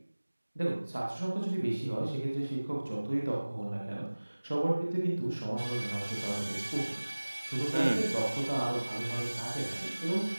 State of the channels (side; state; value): both; inverted; correlation -1.00